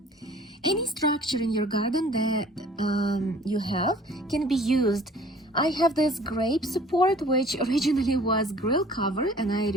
Any structure in your garden that you have can be used. I have this grape support, which originally was grill cover, and I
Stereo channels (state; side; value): normal; both; correlation 0.51